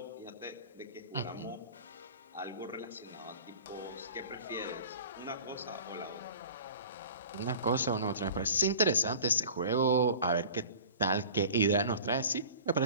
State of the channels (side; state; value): both; inverted; correlation -0.42